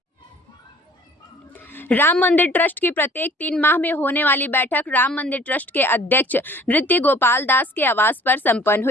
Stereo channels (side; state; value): both; normal; correlation 0.52